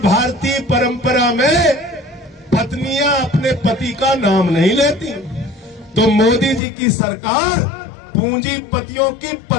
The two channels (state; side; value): drops out; right; at 6.6 s